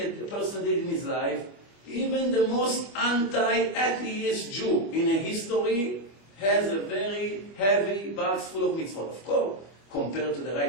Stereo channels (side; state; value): right; late; 25 ms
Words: person did in his life, even the most anti-atheist Jew in a history has a very heavy box full of mitzvot. Of course, compared to the